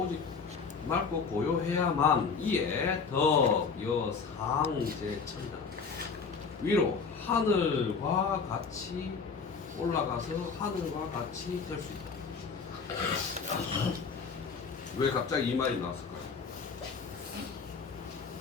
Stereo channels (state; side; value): quieter; right; 5.3 dB